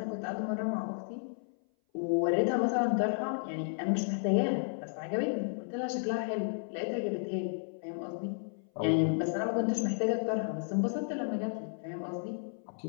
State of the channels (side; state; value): right; silent; 56 dB below the other